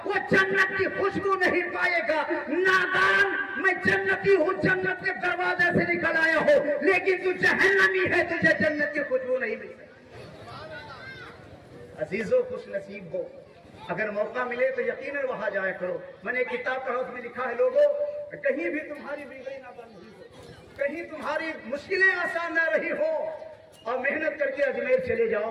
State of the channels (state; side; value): identical; both; correlation 1.00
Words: وہ جنت کی خوشبو نہیں پائے گا. نادان, میں جنتی ہوں, جنت کے دروازے سے نکل آیا ہوں, لیکن تو جہنمی ہے, تجھے جنت کی خوشبو نہیں ملے. عزیزو خوش نصیب ہو, اگر موقع ملے تو یقیناً وہاں جایا کرو. میں نے ایک کتاب پڑھا, اس میں لکھا ہے لوگوں کہیں بھی تمہاری بیماری نہ بند ہوئی ہو, کہیں تمہاری مشکلیں آسان نہ رہی ہو, اور محنت کر کے اجمیر چلے جاؤ,